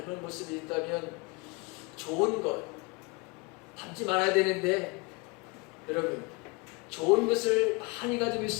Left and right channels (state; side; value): quieter; right; 28.1 dB